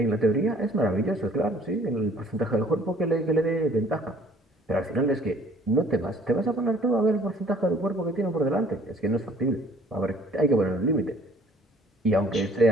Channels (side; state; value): both; normal; correlation 0.55